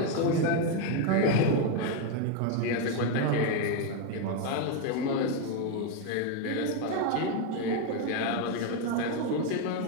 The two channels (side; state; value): both; different; correlation 0.02